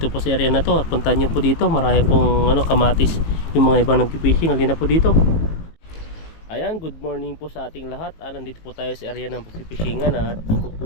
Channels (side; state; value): right; late; 19 ms